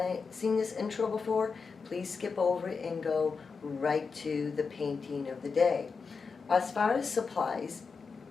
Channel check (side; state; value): right; quieter; 5.1 dB